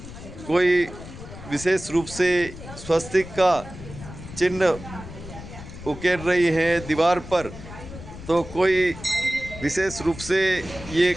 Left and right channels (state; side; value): noise; left; rumble, 13 dB below the sound